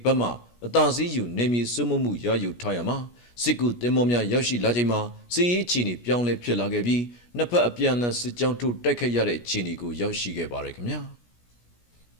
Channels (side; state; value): right; late; 17 ms